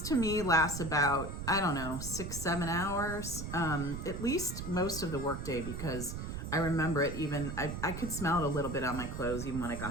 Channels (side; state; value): right; noise; rumble, 6 dB below the sound